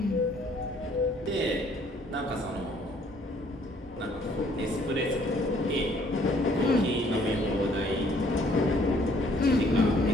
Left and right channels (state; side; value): normal; both; correlation 0.62